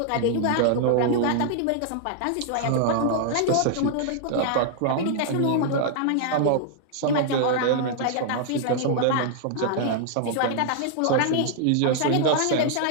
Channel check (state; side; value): different; both; correlation -0.01